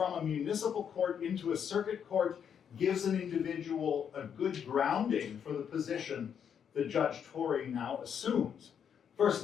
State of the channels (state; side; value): quieter; right; 7.9 dB